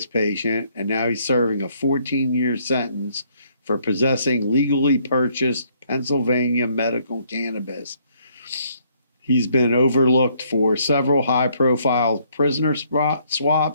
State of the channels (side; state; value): both; inverted; correlation -0.67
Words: patient, and now he's serving a 14-year sentence for possessing legally purchased Pennsylvania medical cannabis. He's been overlooked for several high-profile prisoner